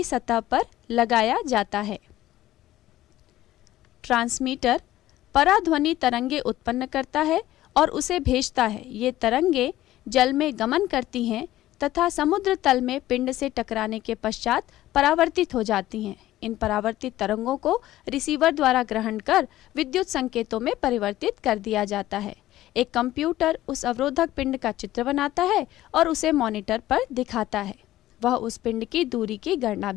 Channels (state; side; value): quieter; right; 14.8 dB